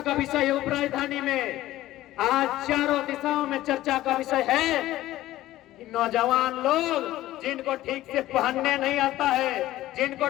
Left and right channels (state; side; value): quieter; right; 15.2 dB